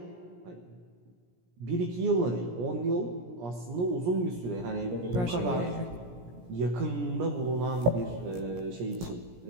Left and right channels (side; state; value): left; late; 17 ms